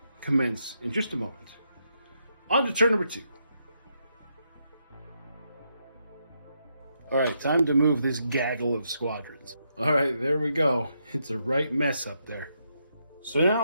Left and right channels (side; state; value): both; inverted; correlation -0.80